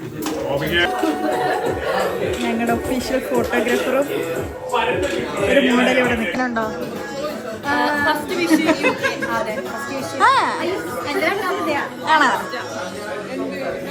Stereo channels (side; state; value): both; identical; correlation 1.00